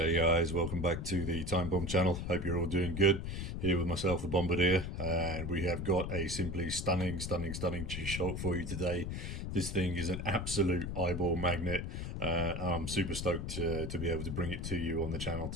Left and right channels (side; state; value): left; noise; rumble, 4 dB below the sound